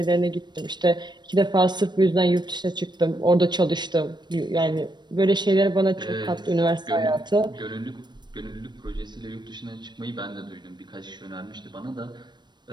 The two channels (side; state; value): left; late; 0.21 ms